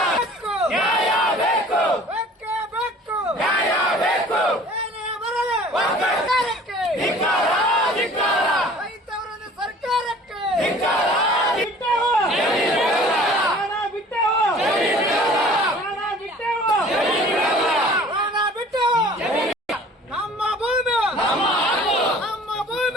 ನ್ಯಾಯ ಬೇಕು, ಬೆಕ್ಕೆ ಬೆಕ್ಕು ನ್ಯಾಯ ಬೇಕು. ಏನೇ ಬರಲಿ ಸರ್ಕಾರಕ್ಕೆ ಧಿಕ್ಕಾರ, ಧಿಕ್ಕಾರ. ರೈತವರನ್ನು ಸರ್ಕಾರಕ್ಕೆ ಧಿಕ್ಕಾರ. ಬಿಟ್ಟೆವು ಪ್ರಾಣ, ಬಿಟ್ಟೆವು ಪ್ರಾಣ, ಬಿಟ್ಟೆವು ಪ್ರಾಣ, ಬಿಟ್ಟೆವು. ನಮ್ಮ ಭೂಮಿ ನಮ್ಮ ಹಕ್ಕು, ನಮ್ಮ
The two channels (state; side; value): normal; both; correlation 0.48